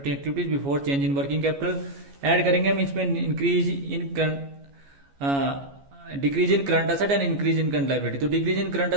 activities before change in working capital. Add करेंगे हम इसमें increase in decrease in current asset and increase in current liability. तो डिक्रीज इन करंट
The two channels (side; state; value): left; late; 14 ms